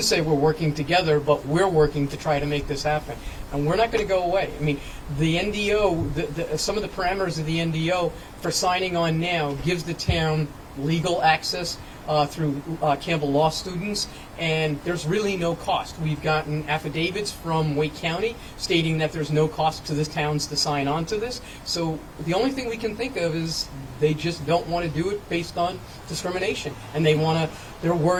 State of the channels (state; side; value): identical; both; correlation 1.00